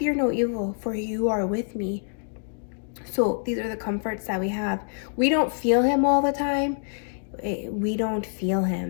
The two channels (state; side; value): silent; right; digital silence